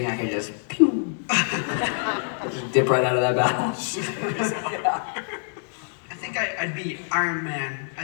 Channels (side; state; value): right; silent; 61 dB below the other